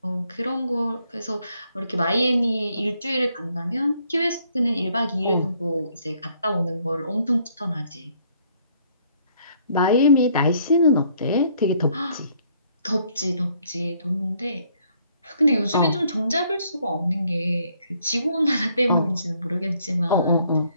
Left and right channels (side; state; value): both; inverted; correlation -0.66